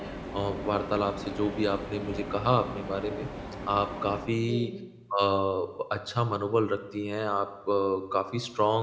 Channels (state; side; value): identical; both; correlation 1.00